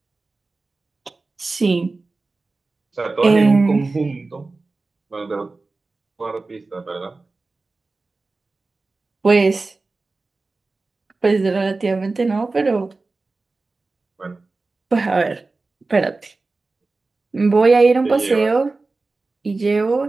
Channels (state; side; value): quieter; left; 3.6 dB